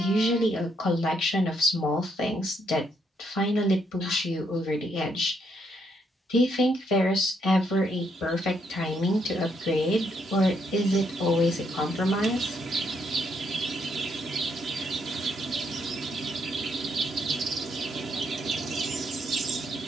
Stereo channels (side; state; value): both; normal; correlation 0.74